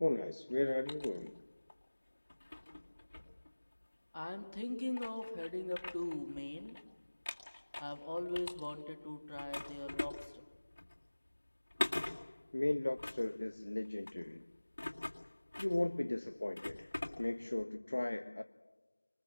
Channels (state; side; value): inverted; both; correlation -1.00